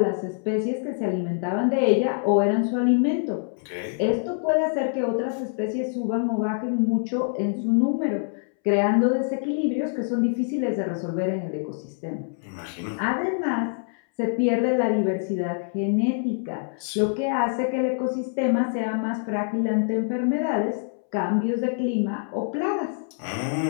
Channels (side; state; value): right; silent; 62 dB below the other